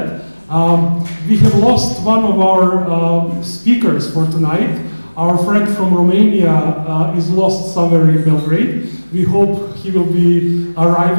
We have lost one of our speakers for tonight. Our friend from Romania is lost somewhere in Belgrade. We hope he will be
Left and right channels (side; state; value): both; inverted; correlation -1.00